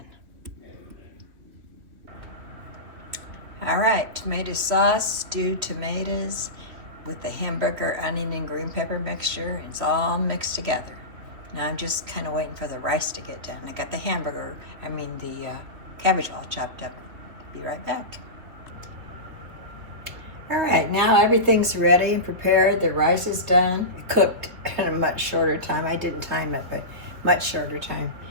All right, tomato sauce, stewed tomatoes with the hamburger, onion, and green pepper mixture. It's all mixed together. Now I'm just kind of waiting for the rice to get done. I got the cabbage all chopped up. Be right back. All right, now everything's ready and prepared. The rice is done. It cooked in a much shorter time. I didn't time it, but much shorter time.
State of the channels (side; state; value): left; late; 3.1 ms